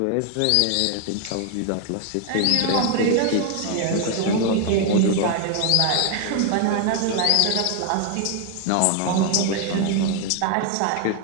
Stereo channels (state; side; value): different; both; correlation 0.00